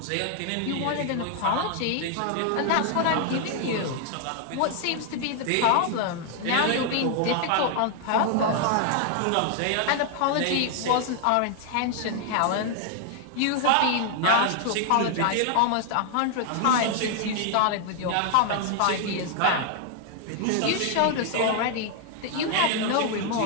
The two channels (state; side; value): different; both; correlation 0.00